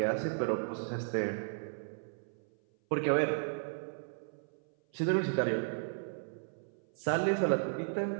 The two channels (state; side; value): silent; left; 55 dB below the other